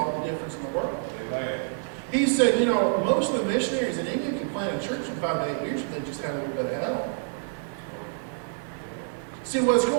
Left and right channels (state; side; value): silent; left; digital silence